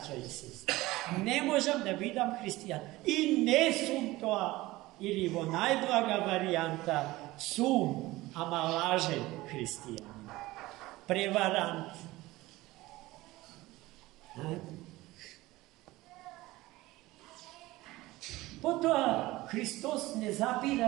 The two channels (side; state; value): left; quieter; 18.9 dB